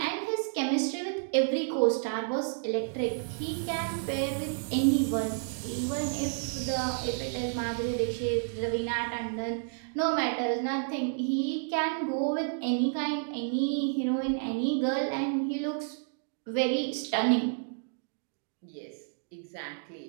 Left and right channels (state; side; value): silent; left; digital silence